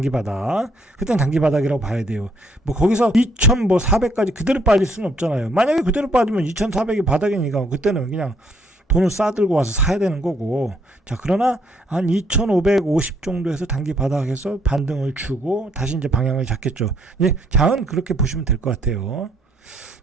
바닥. 그때는 단기 바닥이라고 봐야 돼요. 뭐 거기서 2400까지 그대로 빠질 수는 없잖아요. 만약에 그대로 빠지면 2400이 바닥이니까 그때는 그냥 돈을 싸들고 와서 사야 되는 거고. 자, 그러나 한 2550 정도에서 단기 바닥에서 반등을 주고 다시 이제 방향을 잡겠죠. 예, 장은 그렇게 보시면 될 것 같아요.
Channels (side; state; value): both; normal; correlation 0.68